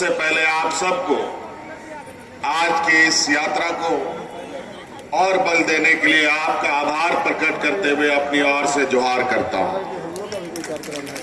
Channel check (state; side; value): identical; both; correlation 1.00